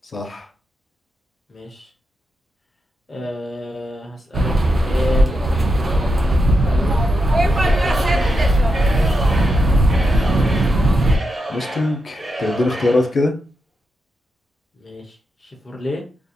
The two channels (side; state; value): both; normal; correlation 0.86